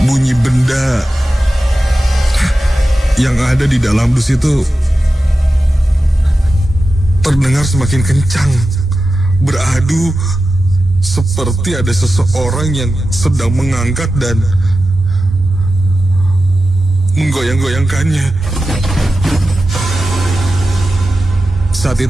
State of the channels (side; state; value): both; normal; correlation 0.93